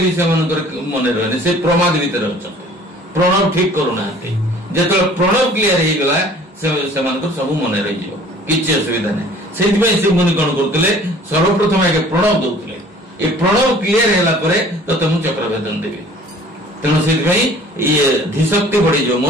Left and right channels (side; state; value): both; normal; correlation 0.50